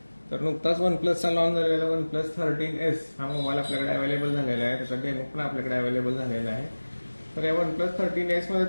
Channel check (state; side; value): inverted; both; correlation -1.00